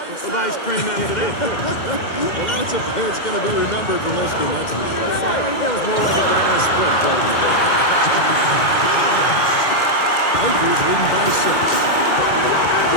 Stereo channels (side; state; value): right; late; 2.1 ms